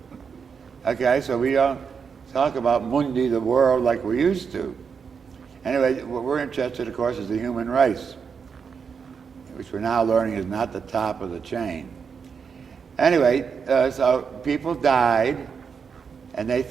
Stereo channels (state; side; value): quieter; left; 6.2 dB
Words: Okay, so we don't talk about mundi, the world, like we used to. Anyway, what we're interested, of course, is the human race, which we're now learning is not the top of the chain. Anyway, so people died, and they